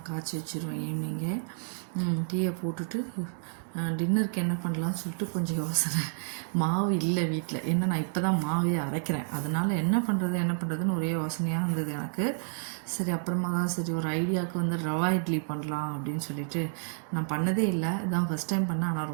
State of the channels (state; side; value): silent; left; digital silence